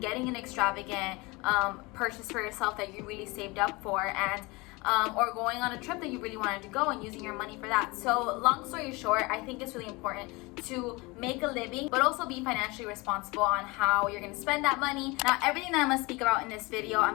an extravagant purchase for yourself that you really saved up for, and or going on a trip that you really wanted to go and using your money for that. So long story short, I think it's really important to make a living, but also be financially responsible on how you're going to spend that money. Now, everything that I'm going to speak about in this video,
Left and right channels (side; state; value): right; quieter; 24.8 dB